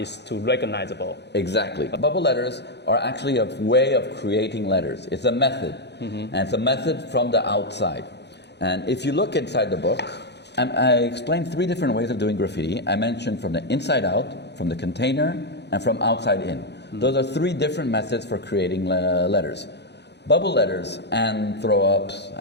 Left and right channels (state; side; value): late; right; 0.50 ms